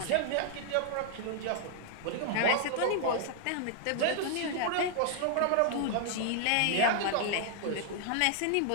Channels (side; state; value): both; different; correlation 0.00